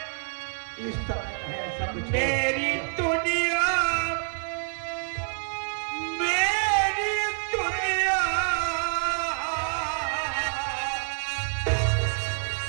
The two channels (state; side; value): silent; left; 60 dB below the other